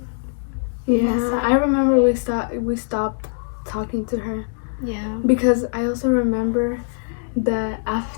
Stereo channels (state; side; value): silent; right; digital silence